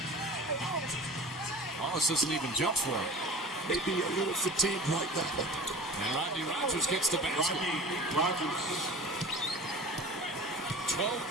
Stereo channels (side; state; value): both; normal; correlation 0.38